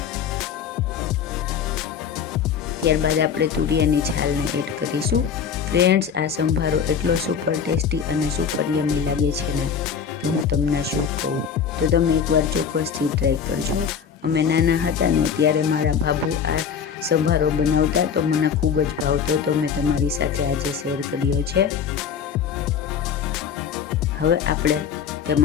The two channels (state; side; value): quieter; right; 7.2 dB